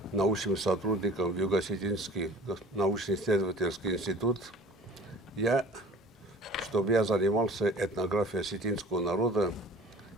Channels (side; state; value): both; normal; correlation 0.46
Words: научным сотрудником в Юго-Осетинский научно-исследовательский институт, чтобы я занимался этнографией осетинского народа,